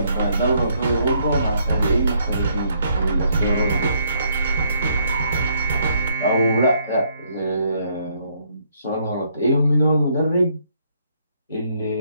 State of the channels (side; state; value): both; inverted; correlation -0.70